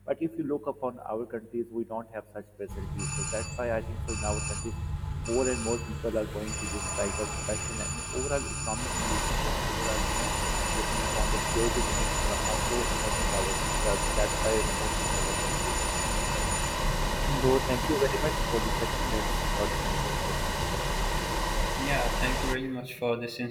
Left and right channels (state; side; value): identical; both; correlation 1.00